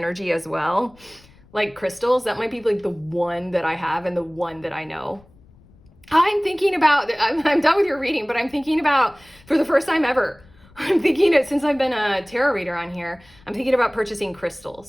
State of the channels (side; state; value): left; noise; rumble, 27 dB below the sound